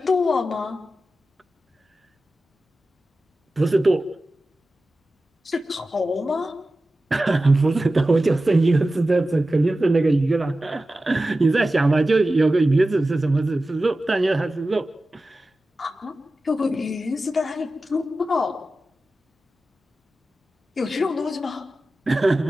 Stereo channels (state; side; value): normal; both; correlation 0.94